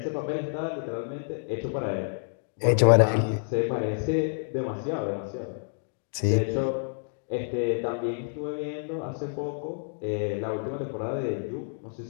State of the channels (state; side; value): silent; right; digital silence